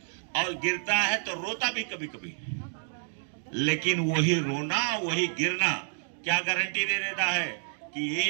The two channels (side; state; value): left; silent; digital silence